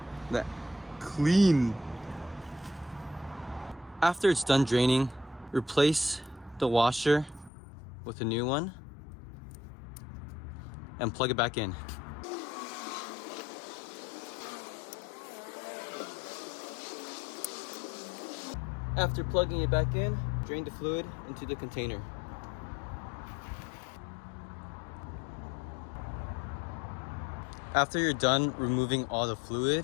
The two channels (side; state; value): right; drops out; at 7.5 s